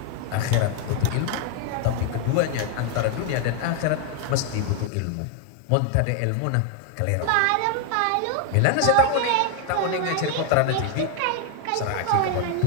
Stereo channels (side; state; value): both; different; correlation 0.00